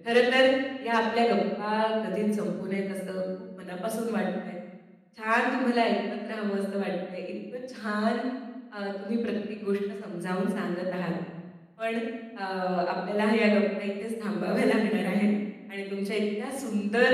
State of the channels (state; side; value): identical; both; correlation 1.00